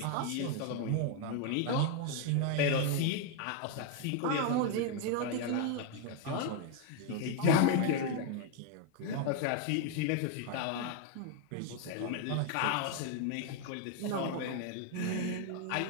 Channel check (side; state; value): both; different; correlation 0.01